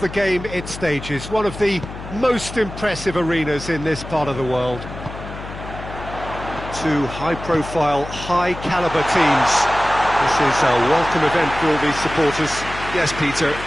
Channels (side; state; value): left; noise; hum, 11 dB below the sound